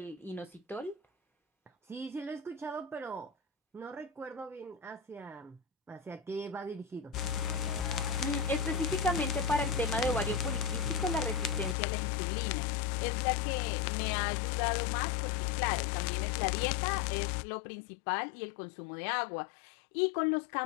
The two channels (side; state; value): right; drops out; at 11.8 s